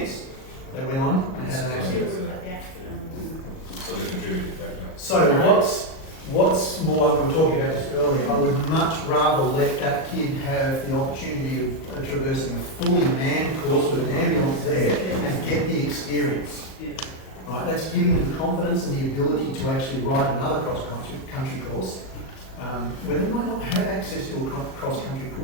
they went on, they had an accident. So we contributed back to So what's more, we were talking about this earlier, I would much rather let that kid have the opportunity of traversing a fully manned course with an ambulance there and get the experience. Right, that's giving them the confidence and the ability to actually ride another cross-country course, where they might not have access to a cross-country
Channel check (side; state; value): right; late; 38 ms